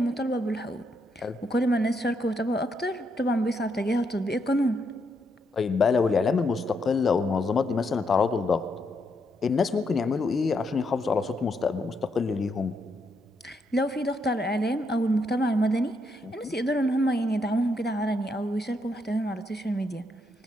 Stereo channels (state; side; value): normal; both; correlation 0.78